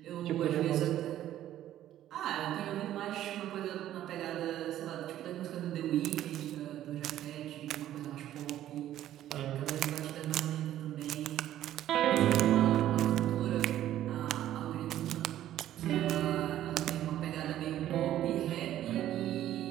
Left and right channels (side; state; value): left; quieter; 12.5 dB